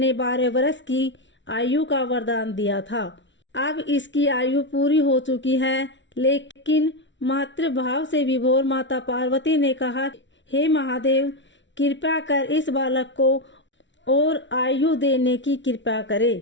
12 वर्ष की आयु का वरदान दिया था। अब इसकी आयु पूरी हो चुकी है, लेकिन मातृभाव से विभोर माता पार्वती ने कहा, हे महादेव, कृपा कर इस बालक को और आयु देने की कृपा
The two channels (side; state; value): right; late; 0.54 ms